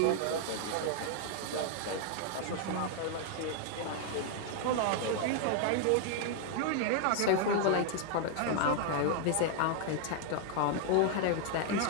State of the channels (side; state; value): both; different; correlation 0.00